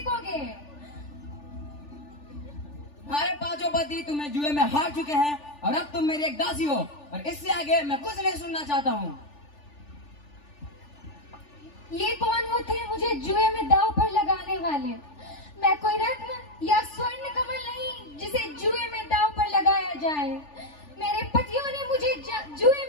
तुम्हारे 5 पति तुम्हें जुए में हार चुके हैं और अब तुम मेरी एक दासी हो और इससे आगे मैं कुछ नहीं सुनना चाहता हूँ। ये कौन होते हैं मुझे जुए में दांव पर लगाने वाले? मैं कोई रत्न या स्वर्ण कमल नहीं जिसे जुए में दांव पर लगाया जाए। मेरे पतियों ने मुझे जुए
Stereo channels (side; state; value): right; late; 3.4 ms